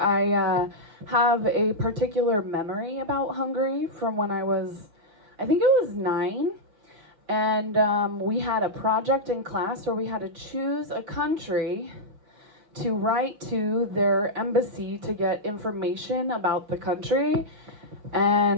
have a particular memory about Hungary from when I think it was 9. And we had a project in class where we had to choose a country to write to their embassy to get information about the country.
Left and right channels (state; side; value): late; left; 6.3 ms